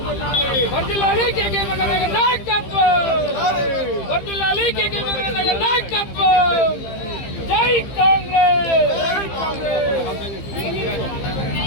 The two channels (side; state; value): right; late; 15 ms